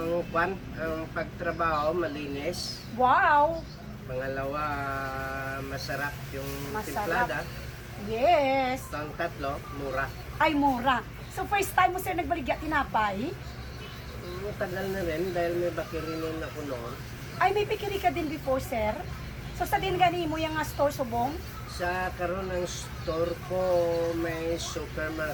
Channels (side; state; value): both; identical; correlation 1.00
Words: pagtrabaho malinis. Wow! Pangalawa, masarap yung Masarap. timplada. Yes! Ang tatlo, mura. Ay, mura. So first time mo Sir nagbaligya tinapay? Tagal na rin dahil may bakirinin ako noon. Ay, may bakery ka din before Sir? So sa din gani mo yung store subong? Sa karon ng store ko, may